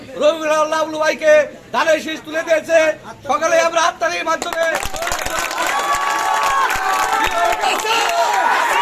রবিউল লাবলু ভাইকে ধানের শীষ তুলে দিয়েছে। সকালে আমরা হাততালির মাধ্যমে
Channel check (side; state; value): both; identical; correlation 1.00